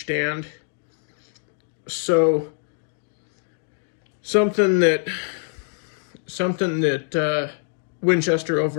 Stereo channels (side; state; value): right; silent; digital silence